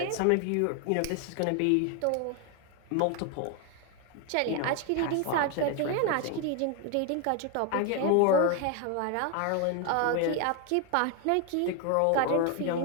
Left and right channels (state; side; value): different; both; correlation 0.01